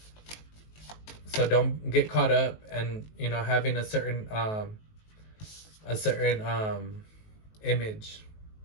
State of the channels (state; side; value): late; right; 19 ms